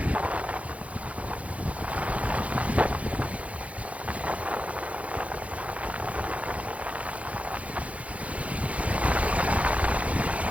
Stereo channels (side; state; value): left; late; 0.065 ms